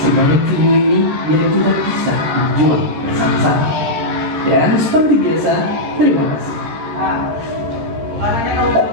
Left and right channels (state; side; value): late; left; 13 ms